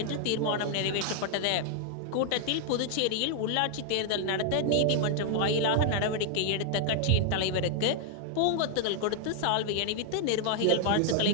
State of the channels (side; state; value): both; different; correlation 0.00